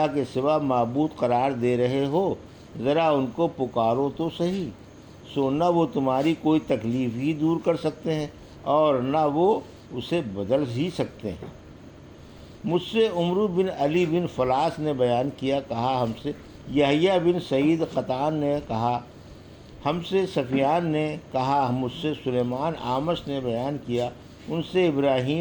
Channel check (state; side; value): identical; both; correlation 1.00